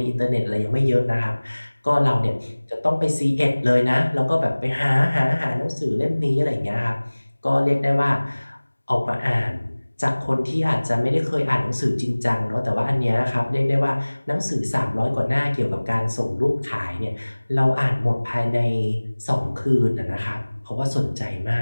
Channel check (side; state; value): both; inverted; correlation -1.00